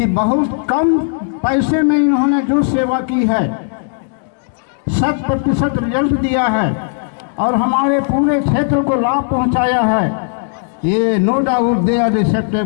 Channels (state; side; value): silent; right; digital silence